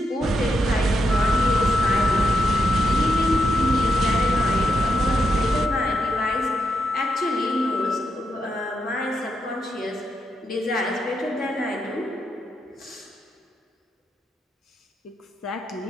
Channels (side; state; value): both; normal; correlation 0.82